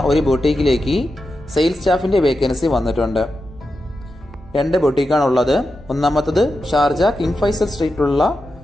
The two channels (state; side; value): normal; both; correlation 0.89